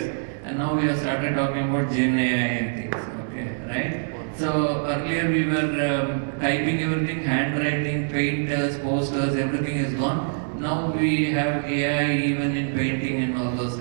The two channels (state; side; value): silent; left; digital silence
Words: and now we have started talking about Gen AI and things. Okay, right? So earlier we were typing everything, handwriting, painters, posters, everything is gone. Now we have AI even in painting and all those